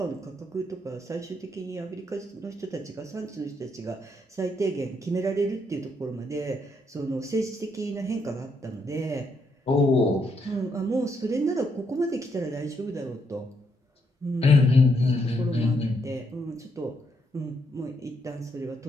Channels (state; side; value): normal; both; correlation 0.76